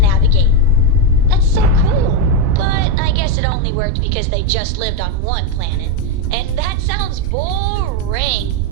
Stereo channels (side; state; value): both; different; correlation 0.04